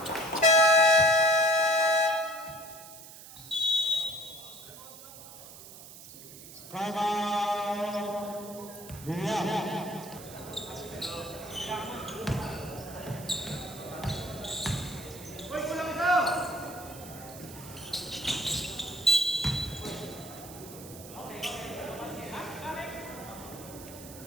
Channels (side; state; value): right; noise; hiss, 16 dB below the sound